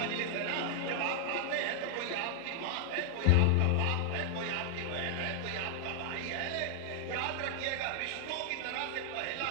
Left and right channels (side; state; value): both; different; correlation 0.00